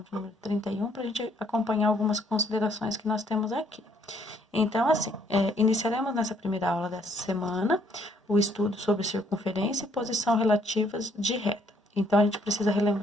de número 31, para a gente acompanhar algumas considerações que nós temos aqui. Então, assim, iniciaremos nessa primeira aula dessa semana o estudo sobre circunferência e posição relativas de reta. Então, a gente precisa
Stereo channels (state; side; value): normal; both; correlation 0.67